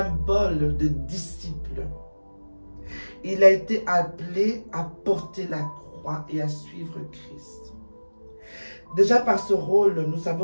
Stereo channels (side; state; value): both; inverted; correlation -1.00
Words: de disciple. Il a été appelé à porter la croix et à suivre Christ. Déjà par ce rôle, nous